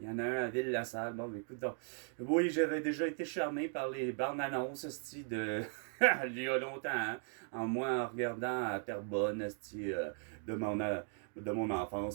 y en a un à Ville-la-Salle, bon, écoute, donc, oui, j'avais déjà été charmé par les bandes annonces, de, il y a longtemps, hein, en regardant à Terrebonne, de mon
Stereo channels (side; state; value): left; silent; 53 dB below the other